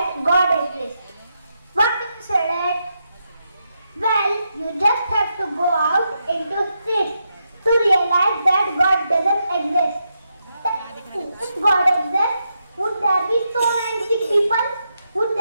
God exists. What do you say that? Well, you just have to go out into streets to realize that God doesn't exist. If God exists, would there be so many sick people? Would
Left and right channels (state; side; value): inverted; both; correlation -0.83